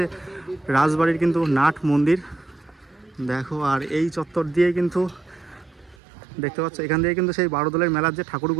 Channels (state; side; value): drops out; left; at 6.0 s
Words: রাজবাড়ির কিন্তু নাট মন্দির, দেখো। আর এই চত্বর দিয়ে কিন্তু দেখতে পাচ্ছ, এখান দিয়ে কিন্তু সেই বারোদলের মেলার যে